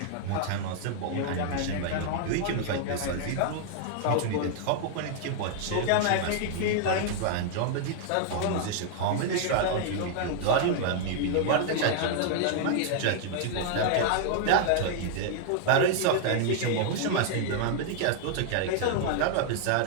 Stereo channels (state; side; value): different; both; correlation 0.00